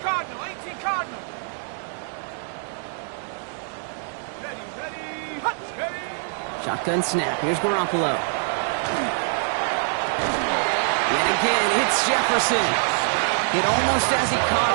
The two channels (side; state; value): left; silent; 62 dB below the other